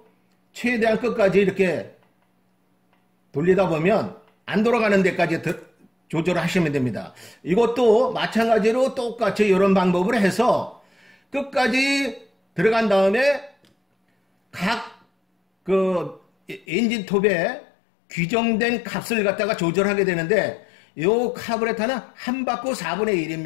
최대한 끝까지 이렇게 돌리다 보면 안 돌아가는 데까지 조절을 하시면 됩니다. 이것도 마찬가지로 똑같이 이런 방법을 해서 끝까지 들어간 다음에 각 그 엔진 톱에 규정된 값을 갖다가 조절하게 되는데 요 카브레터는 한 바퀴 4분의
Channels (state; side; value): drops out; right; at 16.7 s